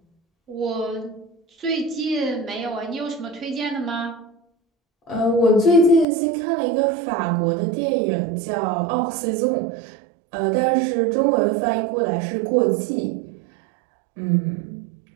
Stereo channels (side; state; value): left; drops out; at 6.1 s